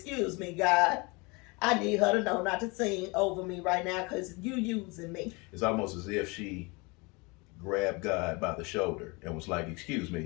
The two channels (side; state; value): right; quieter; 27.4 dB